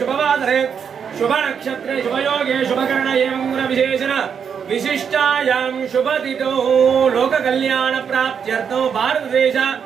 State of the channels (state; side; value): quieter; left; 7.1 dB